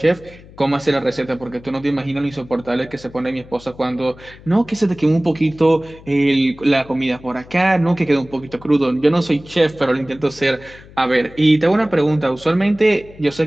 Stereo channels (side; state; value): left; noise; hum, 21 dB below the sound